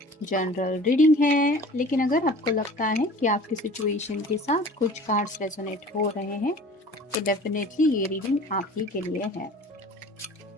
जनरल रीडिंग है, लेकिन अगर आपको लगता है कि आपकी सिचुएशन के साथ कुछ कार्ड्स रेजोनेट हो रहे हैं तो डेफिनेटली ये रीडिंग आप ही के लिए है।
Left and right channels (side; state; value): both; normal; correlation 0.44